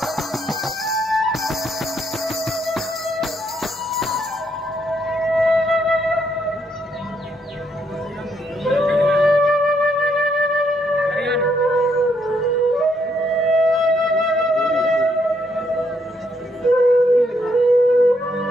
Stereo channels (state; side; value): normal; both; correlation 0.74